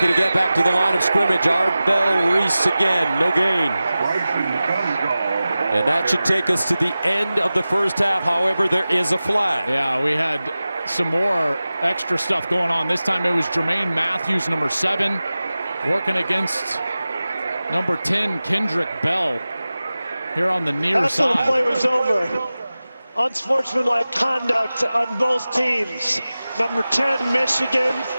to get back to the line of scrimmage. Arbel Reese again, no gain. And that should take us to the end of the first half. However, there is a flag. Yeah, we had some more extra stuff going on. This time it was Jermaine Matthews, number 7, working against number 10, Kendrick Bell, here on the near side. After the play was over, unsportsmanlike conduct on both teams. Number 10, Michigan,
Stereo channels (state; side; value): inverted; both; correlation -0.96